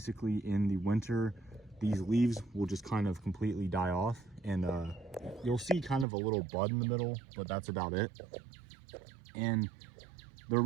in the winter, these leaves will just kind of completely die off, and you'll see kind of a little bud in the middle, but that's about it. And they're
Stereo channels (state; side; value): drops out; left; at 6.1 s